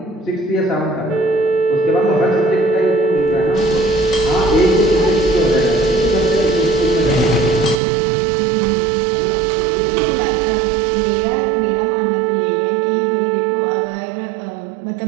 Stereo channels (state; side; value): drops out; left; at 7.8 s